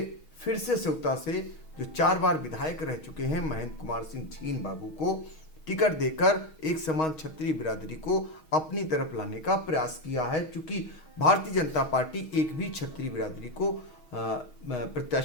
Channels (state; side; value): late; right; 6.3 ms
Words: फिर से सेवता से जो 4 बार विधायक रह चुके हैं महेंद्र कुमार सिंह छीन बाबू को टिकट देकर एक समान छत्री बिरादरी को अपनी तरफ लाने का प्रयास किया है, क्योंकि भारतीय जनता पार्टी एक भी छत्री बिरादरी को